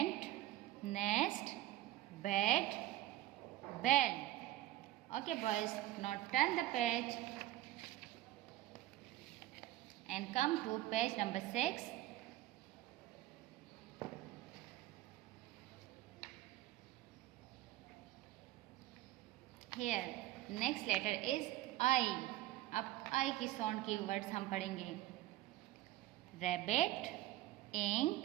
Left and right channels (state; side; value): quieter; left; 15.5 dB